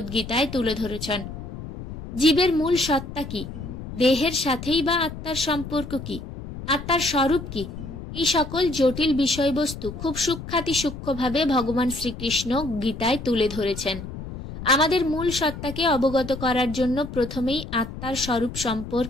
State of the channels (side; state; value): left; noise; rumble, 10 dB below the sound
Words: গীতায় তুলে ধরেছেন। জীবের মূল সত্তা কি? দেহের সাথেই বা আত্মার সম্পর্ক কি? আত্মার স্বরূপ কি? এই সকল জটিল বিষয়বস্তু খুব সূক্ষ্মভাবে ভগবান শ্রীকৃষ্ণ গীতায় তুলে ধরেছেন। আমাদের মূল সত্তাকে অবগত করার জন্য প্রথমেই আত্মার স্বরূপ